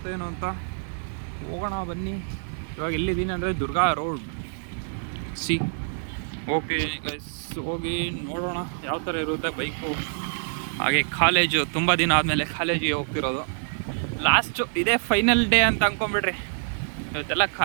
ಏನೋ ಅಂತ. ಹೋಗೋಣ ಬನ್ನಿ. ಇವಾಗ ಎಲ್ಲಿದ್ದೀನಿ ಅಂದರೆ ದುರ್ಗಾ ರೋಡ್ ಓಕೆ ಗೈಸ್, ಹೋಗಿ ನೋಡೋಣ ಯಾವ ಥರ ಇರುತ್ತೆ ಬೈಕು. ಹಾಗೆ ಕಾಲೇಜು, ತುಂಬ ದಿನ ಆದಮೇಲೆ ಕಾಲೇಜಿಗೆ ಹೋಗ್ತಿರೋದು. ಲಾಸ್ಟು ಇದೇ ಫೈನಲ್ ಡೇ ಅಂತ ಅಂದ್ಕೊಂಬಿಡ್ರಿ. ಇವತ್ತೆಲ್ಲ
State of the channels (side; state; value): left; silent; digital silence